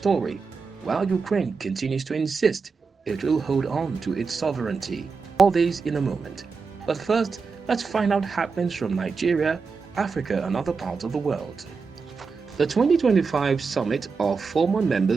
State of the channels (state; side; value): quieter; left; 4.9 dB